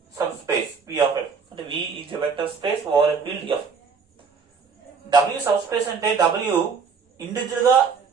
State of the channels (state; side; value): quieter; left; 5.6 dB